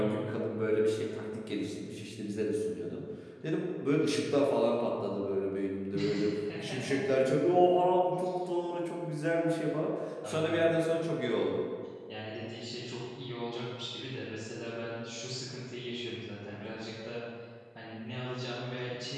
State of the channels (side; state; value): both; identical; correlation 1.00